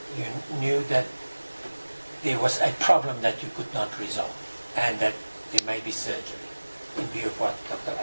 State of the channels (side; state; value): both; inverted; correlation -1.00